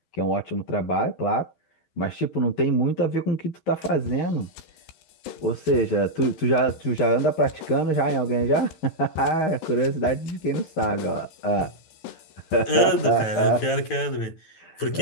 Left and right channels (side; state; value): right; late; 12 ms